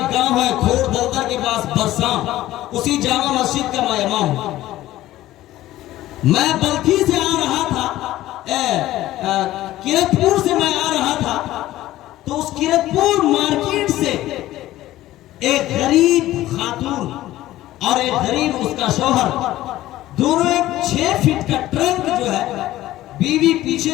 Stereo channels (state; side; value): quieter; right; 15.3 dB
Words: گاؤں ہے کھوڑ دلدر کے پاس برساں، اسی جامع مسجد کا میں امام ہوں۔ میں بلخی سے آ رہا تھا، کرتپور سے میں آ رہا تھا، تو اس کرتپور مارکیٹ سے ایک غریب خاتون اور ایک غریب اس کا شوہر، دونوں ایک 6 فٹ کا ٹرنک جو ہے بیوی